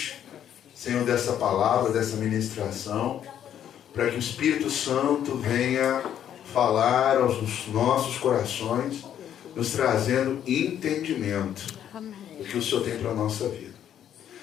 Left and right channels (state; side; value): quieter; right; 10.0 dB